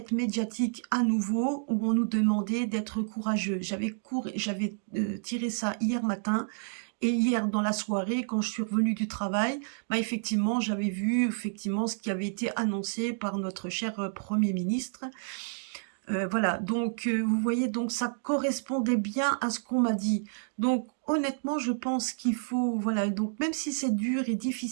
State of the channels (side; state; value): left; silent; digital silence